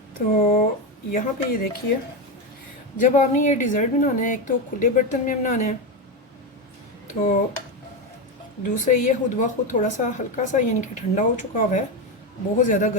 तो यहाँ पे ये देखिए, जब आपने ये डिज़र्ट बनाना है, एक तो खुले बर्तन में बनाना है, तो दूसरे ये खुद ब खुद थोड़ा सा हल्का सा यानी कि ठंडा हो चुका हुआ है, बहुत ज़्यादा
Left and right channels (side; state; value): both; normal; correlation 0.12